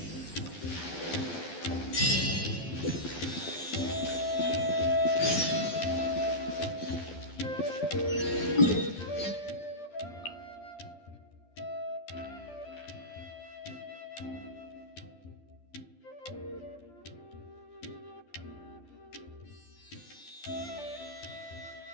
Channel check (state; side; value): late; right; 12 ms